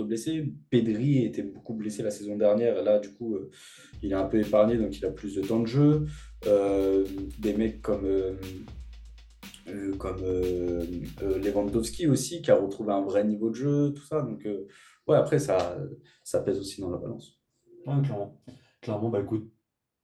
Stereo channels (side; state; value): both; identical; correlation 1.00